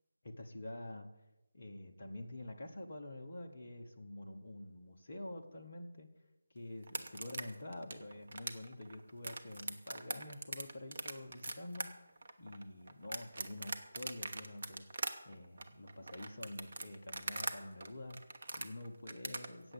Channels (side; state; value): both; inverted; correlation -0.92